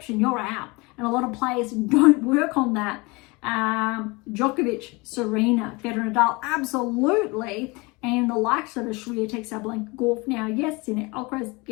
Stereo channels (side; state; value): right; quieter; 25.8 dB